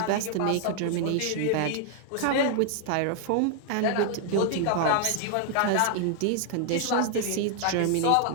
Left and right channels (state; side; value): different; both; correlation 0.00